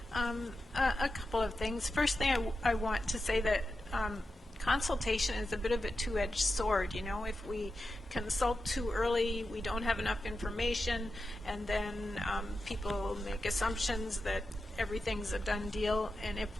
A couple of things. First thing I want to say that consultation is a bit of a two-edged sword. You know, if we consult too early, we don't have enough information, and then people make assumptions that everything's a done deal, and if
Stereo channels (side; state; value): both; normal; correlation 0.90